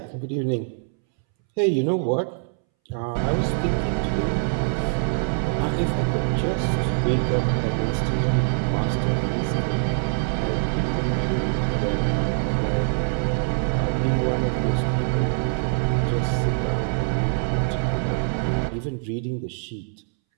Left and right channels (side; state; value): left; silent; 63 dB below the other